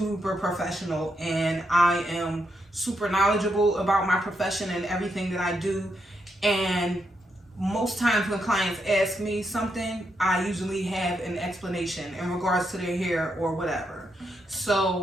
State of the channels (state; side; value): normal; both; correlation 0.81